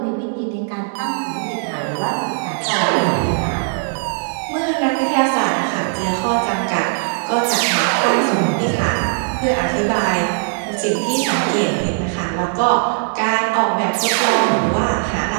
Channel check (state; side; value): silent; left; digital silence